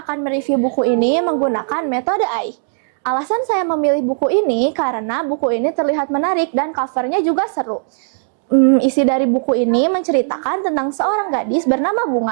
akan mereview buku ini menggunakan metode AI. Alasan saya memilih buku ini karena buku ini terlihat menarik dan covernya juga seru. Isi dari buku ini menceritakan tentang seorang gadis bernama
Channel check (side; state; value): left; silent; digital silence